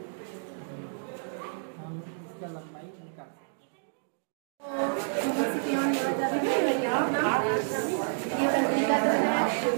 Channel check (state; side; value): silent; left; digital silence